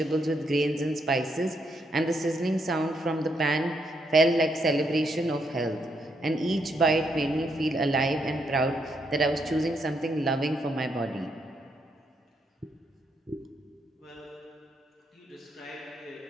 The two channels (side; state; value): both; normal; correlation 0.77